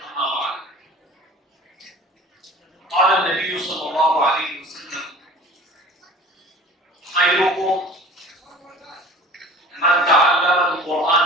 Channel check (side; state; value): both; normal; correlation 0.43